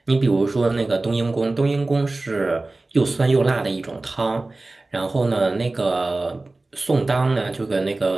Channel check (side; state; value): left; quieter; 3.1 dB